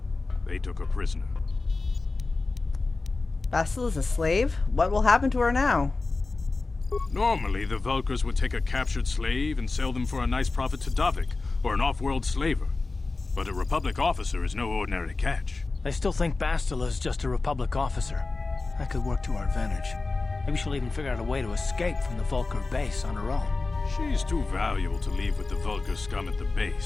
They took her prisoner. Bastil is a slave? What will happen to her now? Normally, the Vulkars would take a captured slave and sell them for a nice profit to Davik, or an off-world slaver. But a Republic officer is no ordinary catch. They still think Bastila is just a Republic officer. That could work to our advantage. Maybe she'll even figure out a way to escape from the Vulkar base on her own. She's too valuable to leave with the Vulkar scum at the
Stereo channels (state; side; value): quieter; right; 3.7 dB